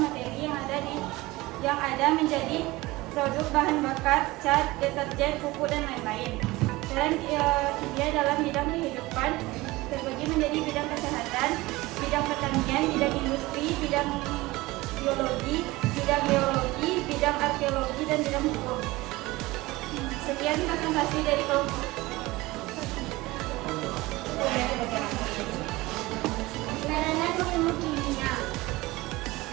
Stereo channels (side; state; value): left; quieter; 20.4 dB